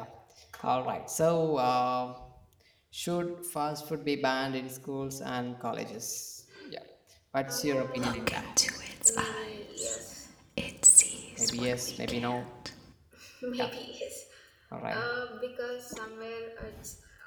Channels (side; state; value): both; identical; correlation 1.00